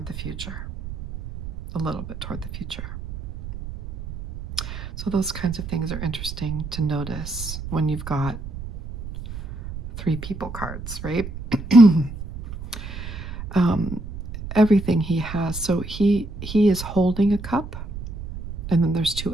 the future, a little bit toward the future. So those kinds of things are interesting to notice when you've got three people cards, right? Everything he has. So he is holding a cup, and then there's two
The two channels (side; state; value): right; noise; rumble, 10 dB below the sound